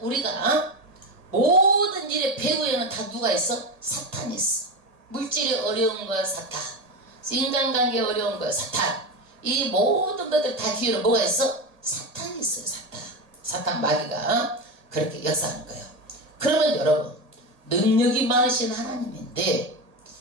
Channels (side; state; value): left; late; 1.8 ms